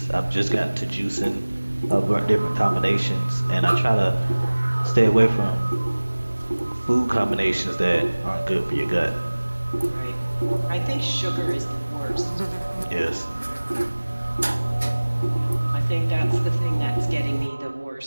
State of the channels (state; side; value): inverted; both; correlation -1.00